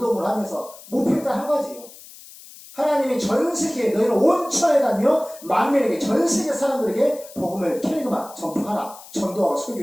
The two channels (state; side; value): noise; left; hiss, 19 dB below the sound